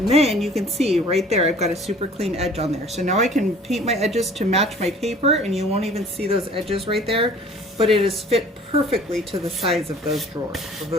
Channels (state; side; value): normal; both; correlation 0.50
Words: then you can see right there I've got a super clean edge on there. So now I can paint my edges to match my paper, and you won't even see those edges right there, but it is fit perfectly to the size of those